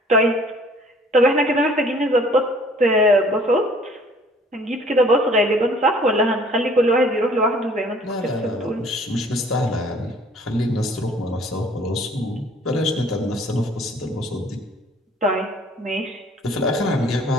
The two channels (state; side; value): normal; both; correlation 0.55